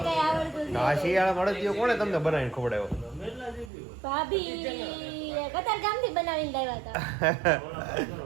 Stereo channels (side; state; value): left; drops out; at 3.7 s